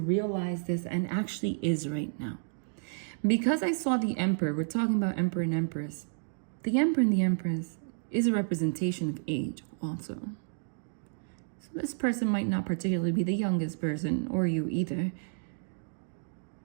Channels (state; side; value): silent; left; digital silence